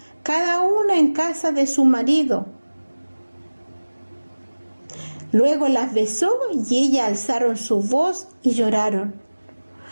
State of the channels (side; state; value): both; inverted; correlation -1.00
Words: cada una en casa de su marido. Luego las besó y ellas alzaron su voz y lloraron.